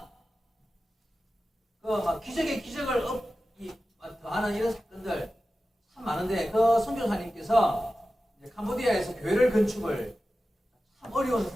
기적의 기적을 더하는 이런 사건들 참 많은데, 그 선교사님께서 캄보디아에서 교회를 건축을 참 어려운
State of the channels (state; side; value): normal; both; correlation 0.94